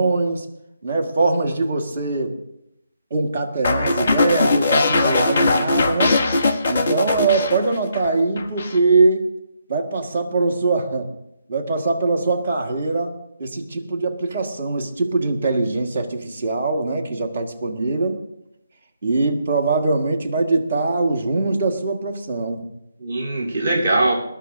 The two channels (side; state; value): both; inverted; correlation -0.76